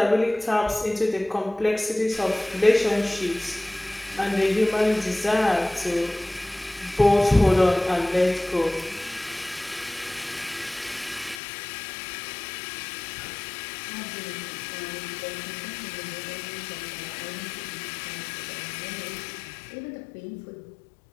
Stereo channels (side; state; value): right; drops out; at 11.4 s